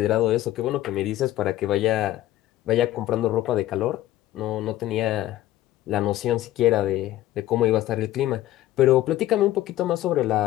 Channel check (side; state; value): right; quieter; 14.5 dB